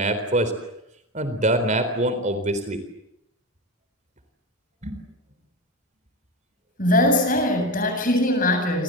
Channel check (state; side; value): normal; both; correlation 0.20